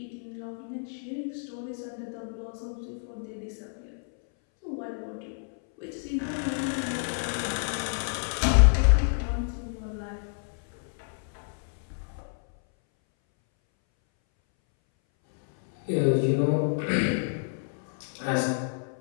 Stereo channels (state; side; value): silent; right; 59 dB below the other